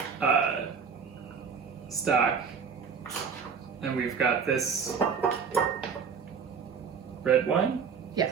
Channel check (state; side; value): quieter; left; 6.2 dB